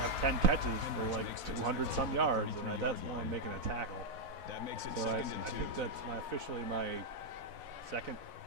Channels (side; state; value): left; late; 4.0 ms